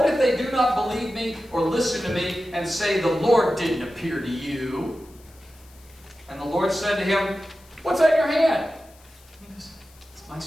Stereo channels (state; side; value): noise; left; hiss, 27 dB below the sound